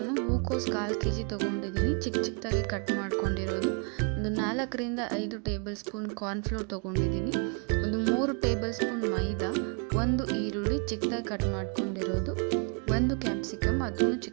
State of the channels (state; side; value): quieter; left; 39.9 dB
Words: ಹೂಕೋಸು 1/4 kg ತೊಗೊಂಡಿದ್ದೀನಿ. ಚಿಕ್ಕದಾಗಿ ಕಟ್ ಮಾಡ್ಕೊಂಡಿರೋದು. ಒಂದು 4ರಿಂದ 5 ಟೇಬಲ್ ಸ್ಪೂನ್ ಕಾರ್ನ್ಫ್ಲೋರ್ ತೊಗೊಂಡಿದ್ದೀನಿ. ಒಂದು 3 ಟೇಬಲ್ ಸ್ಪೂನ್ ಮೈದಾ, 1 ಈರುಳ್ಳಿ ಚಿಕ್ಕದಾಗಿ ಕಟ್ ಮಾಡ್ಕೊಂಡಿರೋದು, 1 ಕ್ಯಾಪ್ಸಿಕಮ್ ಅದನ್ನು